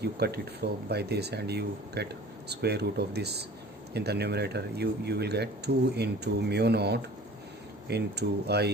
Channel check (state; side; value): normal; both; correlation 0.44